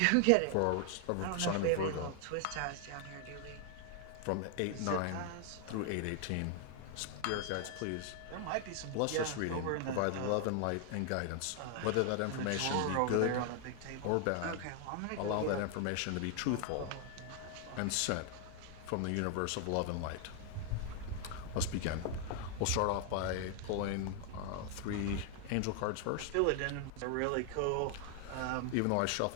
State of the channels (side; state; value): both; different; correlation 0.00